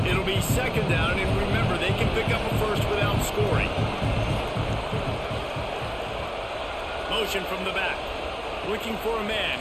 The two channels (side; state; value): both; identical; correlation 1.00